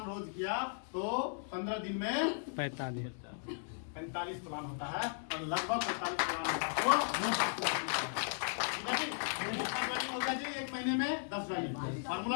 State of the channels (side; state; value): right; silent; digital silence